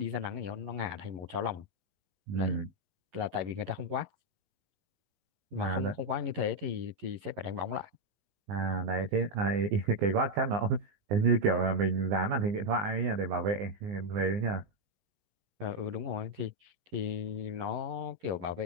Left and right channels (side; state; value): left; late; 11 ms